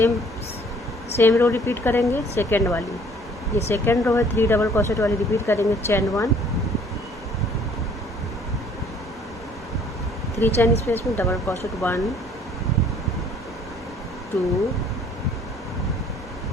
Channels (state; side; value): normal; both; correlation 0.57